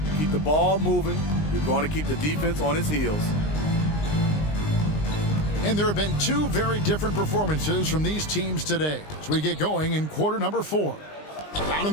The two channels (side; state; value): right; late; 20 ms